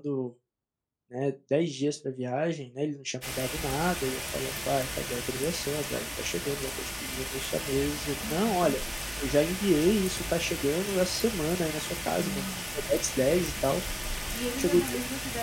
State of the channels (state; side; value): identical; both; correlation 1.00